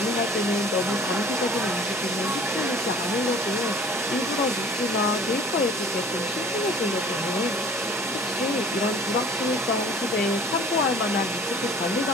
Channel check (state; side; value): normal; both; correlation 0.49